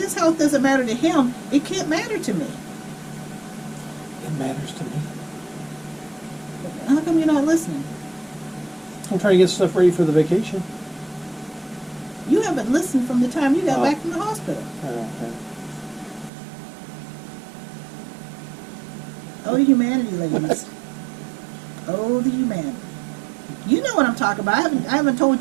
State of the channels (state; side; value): drops out; left; at 16.3 s